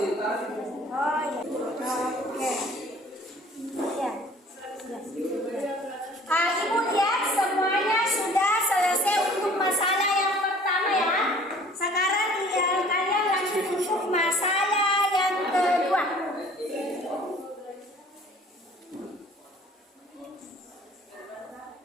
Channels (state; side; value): normal; both; correlation 0.51